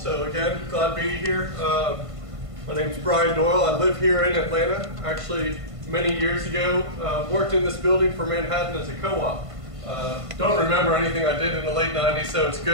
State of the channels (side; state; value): left; late; 1.5 ms